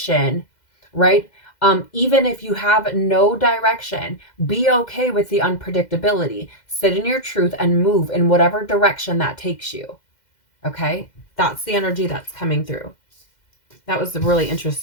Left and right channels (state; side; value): late; right; 2.1 ms